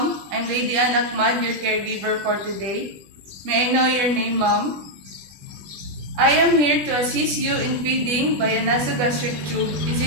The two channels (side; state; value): left; late; 20 ms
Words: I'm Lady Akmad, your caregiver for today. May I know your name, Mom? I am here to assist you in feeding by a nasogastric tube. Is